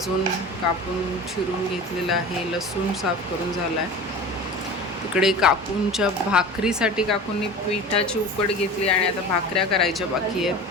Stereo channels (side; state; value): both; normal; correlation 0.35